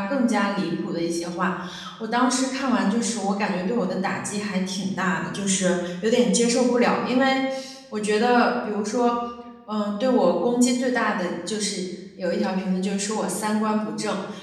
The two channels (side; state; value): both; identical; correlation 1.00